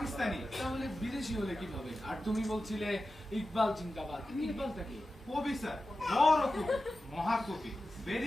তাহলে বিদেশি হলে কিভাবে? আর তুমি বলছিলে ইকবাল জিন্দাবাদ, ইকবালটা কি? কবি স্যার, বড় কবি, মহাকবি,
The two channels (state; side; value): normal; both; correlation 0.93